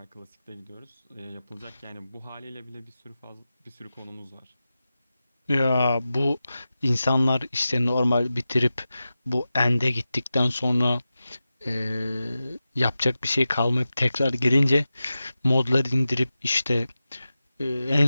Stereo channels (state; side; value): inverted; both; correlation -0.93